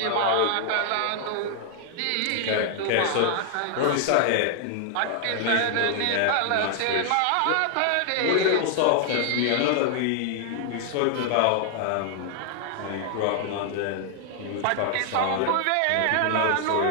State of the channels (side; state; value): both; different; correlation 0.00